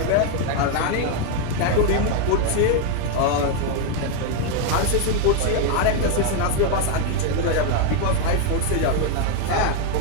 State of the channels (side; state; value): both; different; correlation 0.01